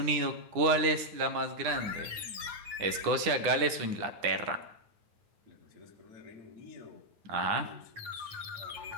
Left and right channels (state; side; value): late; left; 9.8 ms